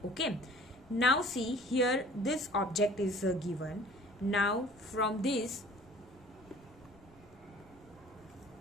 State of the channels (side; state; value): left; noise; rumble, 27 dB below the sound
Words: Okay. Now see here this object is given. Now from this